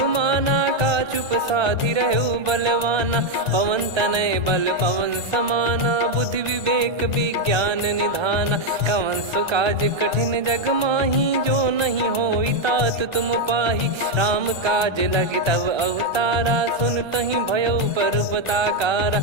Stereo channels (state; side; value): late; left; 1.3 ms